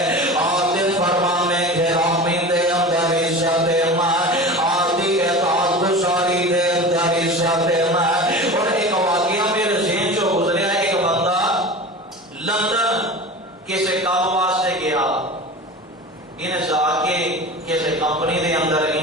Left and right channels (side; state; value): both; normal; correlation 0.33